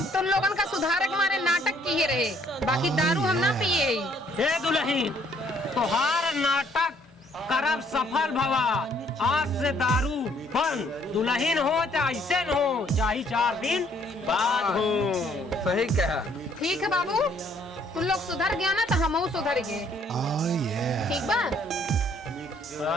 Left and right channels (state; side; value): normal; both; correlation 0.64